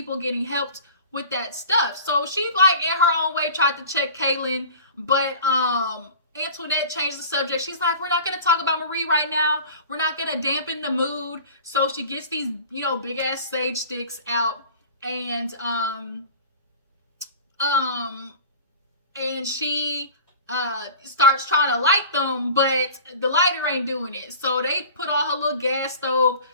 getting helped with that stuff. So she like in her own way tried to check Kaylon, but Antoinette changed the subject. She's like, we're not going to talk about Marie right now. We're not going to dampen the mood. So she gets these, big ass sage sticks out, and she starts trying to light them, but the lighter ain't doing it. So they put on her little gas stove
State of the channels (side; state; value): both; inverted; correlation -0.40